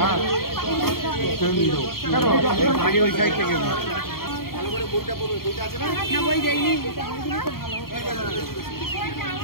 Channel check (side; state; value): right; late; 0.93 ms